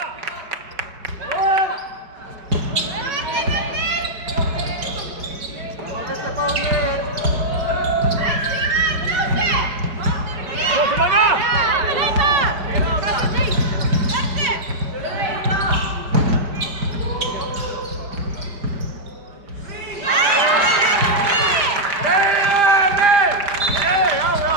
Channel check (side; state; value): left; late; 5.0 ms